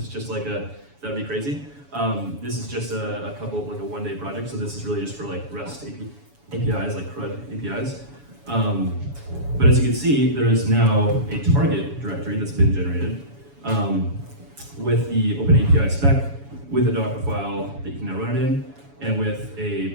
is just like that'd be crazy. This is just a couple, like a one-day project. So this is really just for like REST APIs, like CRUD APIs. But as you can see, there is now a target directory that's been generated with the OpenAPI spec, with a Docker file that you can now run it in, and with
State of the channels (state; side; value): late; left; 7.1 ms